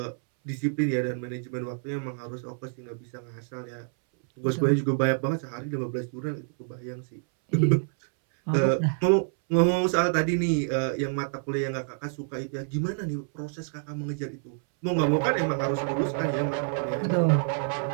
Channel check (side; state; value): left; silent; 60 dB below the other